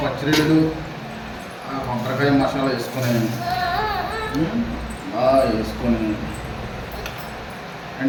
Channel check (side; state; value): both; identical; correlation 1.00